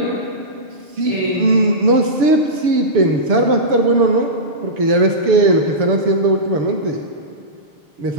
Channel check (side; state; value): left; late; 7.0 ms